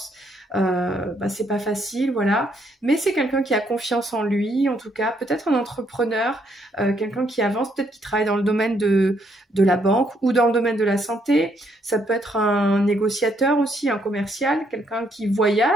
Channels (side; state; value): both; normal; correlation 0.72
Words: bah, c'est pas facile, voilà, mais c'est quelqu'un qui a confiance en lui, en tout cas, peut-être un entrepreneur, quelqu'un qui avance, peut-être qui travaille dans le domaine de la banque ou dans le domaine de la santé. Ça peut être un négociateur aussi, un commercial, quelqu'un qui